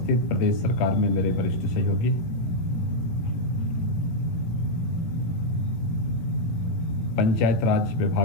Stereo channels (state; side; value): late; right; 18 ms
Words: प्रदेश सरकार में मेरे वरिष्ठ सहयोगी पंचायत राज